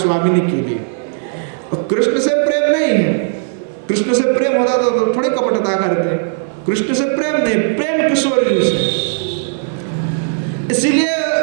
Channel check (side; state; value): left; silent; digital silence